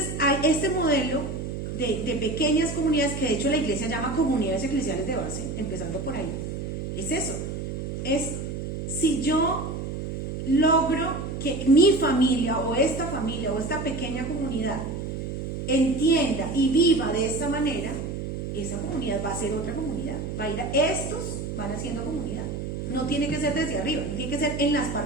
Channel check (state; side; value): noise; right; hum, 5 dB below the sound